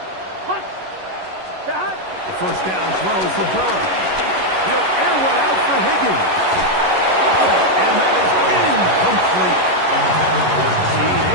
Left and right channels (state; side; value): late; left; 11 ms